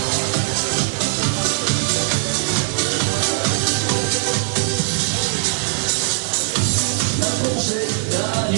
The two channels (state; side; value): silent; left; digital silence